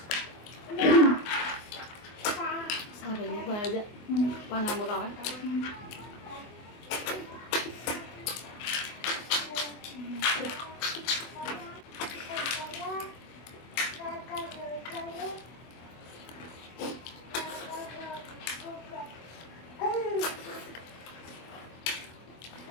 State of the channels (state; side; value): late; right; 24 ms